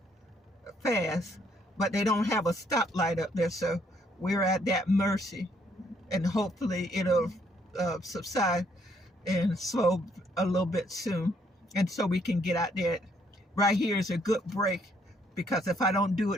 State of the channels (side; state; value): both; normal; correlation 0.69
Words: fast, but they don't have a stoplight up there, so we're at that mercy, and hopefully it'll subside and slow a little bit soon, and so we can get out there. Right here is a good break, because if I don't do